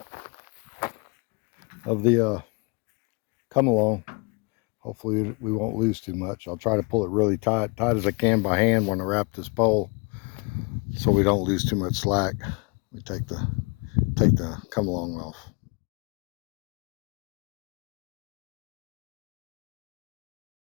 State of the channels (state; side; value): quieter; right; 31.0 dB